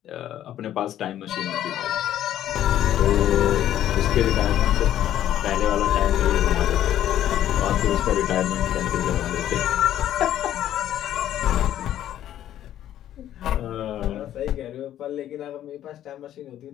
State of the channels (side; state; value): right; quieter; 11.8 dB